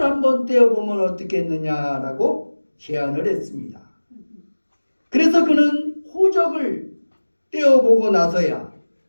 한번 떼어보면 어떻겠느냐라고 제안을 했습니다. 그래서 그는 호적을 떼어보고 나서야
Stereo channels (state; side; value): inverted; both; correlation -1.00